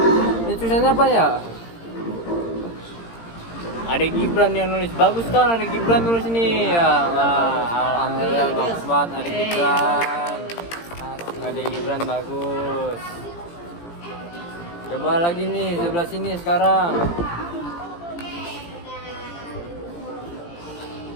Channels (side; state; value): right; late; 17 ms